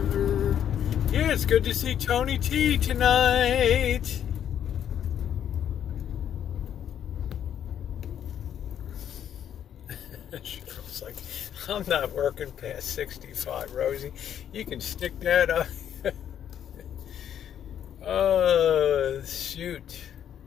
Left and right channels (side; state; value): right; quieter; 9.6 dB